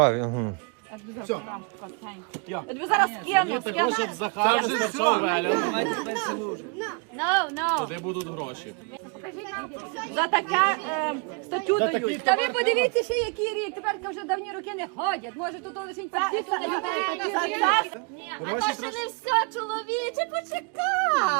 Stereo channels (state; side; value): quieter; left; 33.6 dB